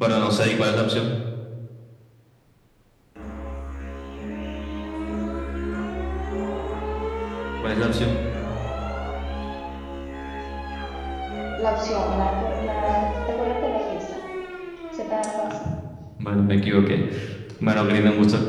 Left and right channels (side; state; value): both; identical; correlation 1.00